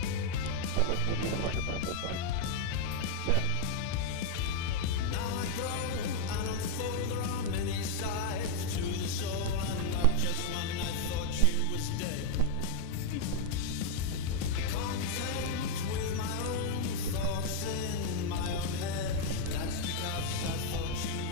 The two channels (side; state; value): both; different; correlation 0.00